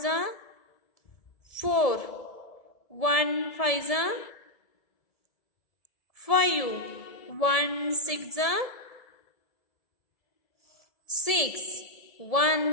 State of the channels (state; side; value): late; right; 1.7 ms